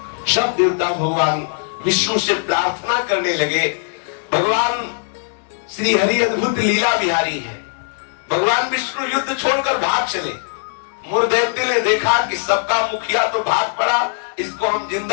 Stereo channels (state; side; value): silent; right; digital silence